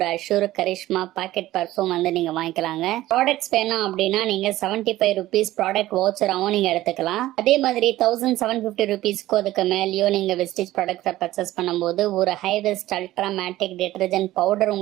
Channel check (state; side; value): quieter; left; 15.7 dB